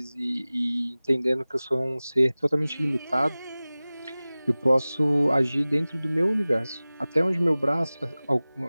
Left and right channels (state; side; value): inverted; both; correlation -0.98